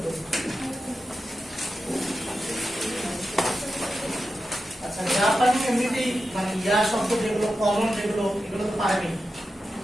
আচ্ছা জাপানি এমনিতেই মানে ইয়া শব্দ যেগুলো কমন যেগুলো এগুলো তো পারেনি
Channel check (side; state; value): both; normal; correlation 0.91